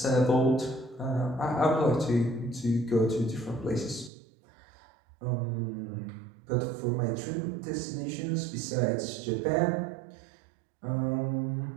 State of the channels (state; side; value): drops out; left; at 4.1 s